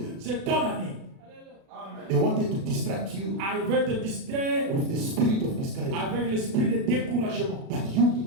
c'est ton année. They wanted to distract you Ah, il veut te distraire with the spirit of discouragement. avec l'esprit de découragement. But you need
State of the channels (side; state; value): left; late; 36 ms